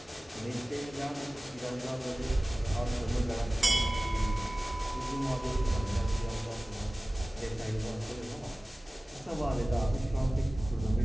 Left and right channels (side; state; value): both; normal; correlation 0.98